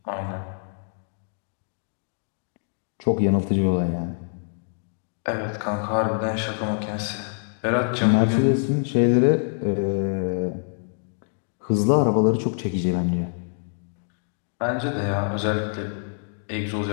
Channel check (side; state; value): right; silent; digital silence